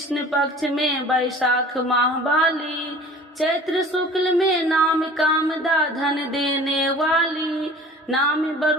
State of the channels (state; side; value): normal; both; correlation 0.45